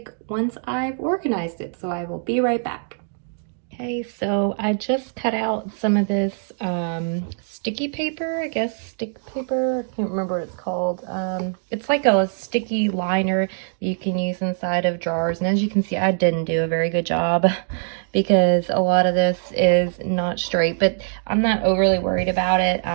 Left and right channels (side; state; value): left; silent; digital silence